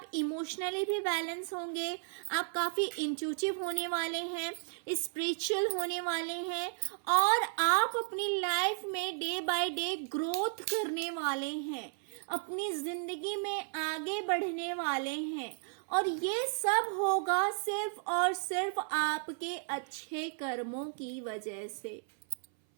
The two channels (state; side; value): silent; left; 55 dB below the other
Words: इमोशनली भी बैलेंस होंगे, आप काफी इंट्यूटिव होने वाले हैं, स्पिरिचुअल होने वाले हैं, और आप अपनी लाइफ में डे बाय डे ग्रोथ करने वाले हैं, अपनी जिंदगी में आगे बढ़ने वाले हैं। और ये सब होगा सिर्फ और सिर्फ आपके अच्छे कर्मों की वजह से।